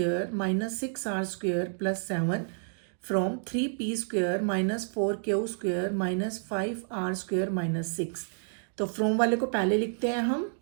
minus 6r square plus 7 from 3p square minus 4q square minus 5r square minus 6। तो from वाले को पहले लिखते हैं हम,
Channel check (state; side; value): silent; left; digital silence